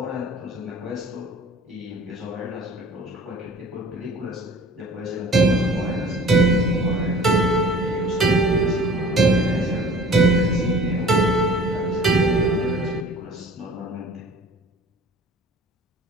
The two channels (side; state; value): both; normal; correlation 0.47